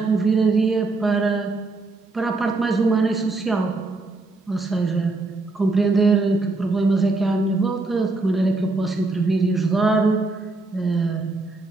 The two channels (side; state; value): left; quieter; 3.4 dB